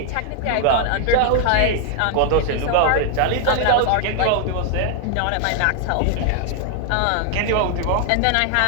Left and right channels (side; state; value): both; different; correlation 0.00